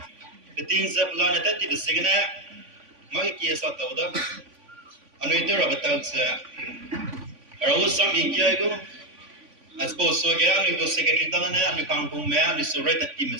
cái tin sẽ plan này thì bị xí cái này mấy cái sao tàu đó anh ấy tôi là bắt đầu sẽ rồi xong ý kia cũng as suppose so cái anh ấy có secretary đó này anh ấy càng cùng mẹ anh ấy số rate team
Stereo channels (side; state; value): left; late; 3.5 ms